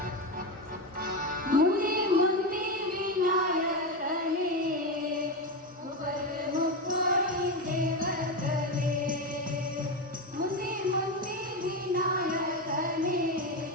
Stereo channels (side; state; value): both; normal; correlation 0.14